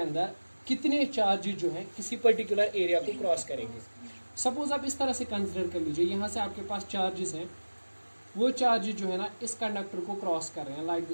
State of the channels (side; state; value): both; inverted; correlation -1.00